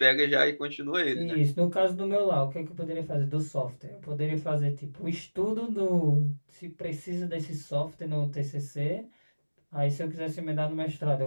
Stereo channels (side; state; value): both; inverted; correlation -1.00